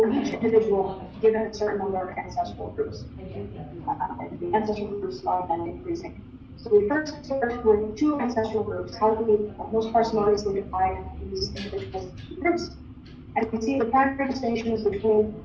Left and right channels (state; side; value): identical; both; correlation 1.00